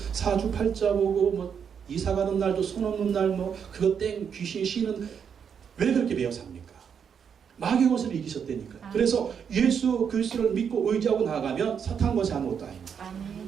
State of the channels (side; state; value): left; quieter; 7.3 dB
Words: 사주팔자 보고 뭐 이사 가는 날도 손 없는 날 뭐 그거 땡 귀신 쉬는 왜 그렇게 매여 삽니까? 마귀의 것을 이기셨다니까. 그래서 예수 그리스도를 믿고 의지하고 나아가면 사탄 것이 아무것도 아닙니다.